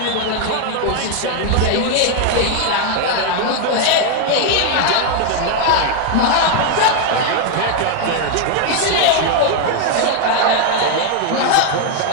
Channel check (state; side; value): different; both; correlation 0.00